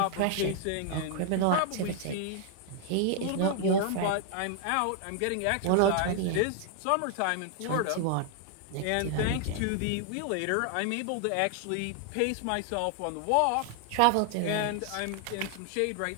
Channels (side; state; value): both; different; correlation 0.00